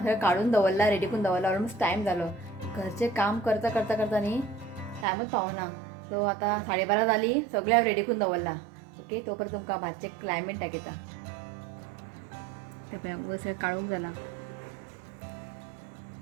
काडून दवरला, रेडी करून दवरला. ऑलमोस्ट टायम जालो. घरचें काम करता करता करता न्ही टायमूच पावना. सो आतां 12:30 जाली, सगळें हांवें रेडी करून दवरला. ओके, तो पर्यंत तुमकां भाजचें क्लायमेट दाखयता. ते पळय वयर सगळें काळोख जाला.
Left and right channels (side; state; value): left; drops out; at 5.1 s